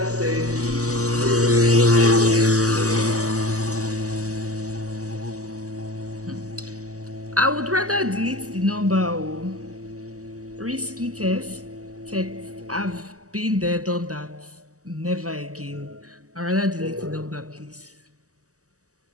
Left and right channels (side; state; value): left; late; 0.66 ms